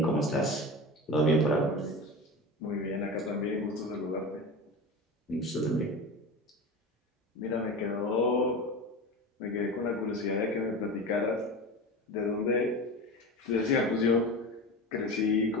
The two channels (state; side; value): normal; both; correlation 0.28